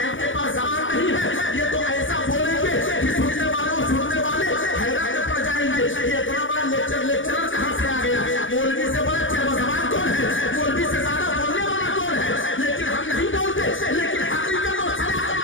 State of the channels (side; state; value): right; late; 0.56 ms